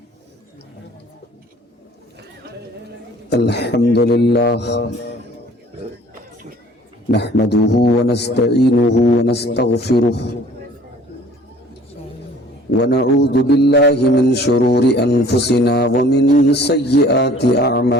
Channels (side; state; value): both; normal; correlation 0.52